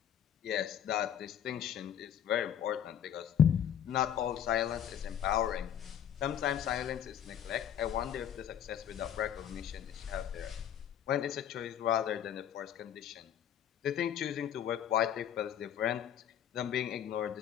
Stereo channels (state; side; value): quieter; right; 9.6 dB